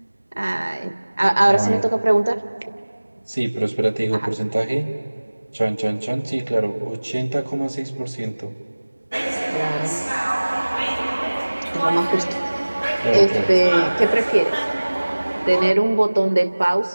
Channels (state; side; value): inverted; both; correlation -1.00